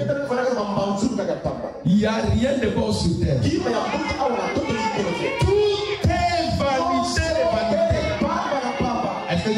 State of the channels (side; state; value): both; identical; correlation 1.00